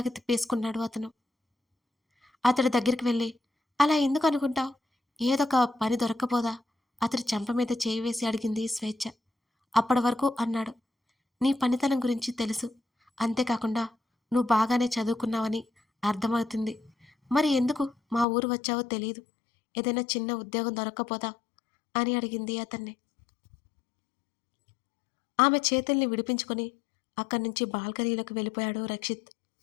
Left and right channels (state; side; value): drops out; right; at 18.2 s